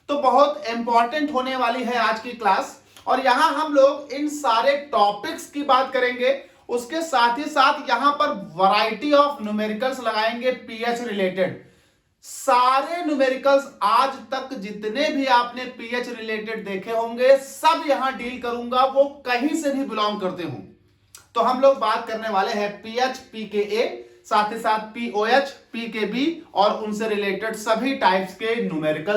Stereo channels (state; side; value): identical; both; correlation 1.00